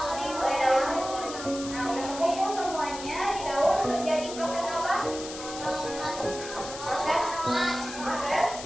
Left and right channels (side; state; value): left; noise; hiss, 11 dB below the sound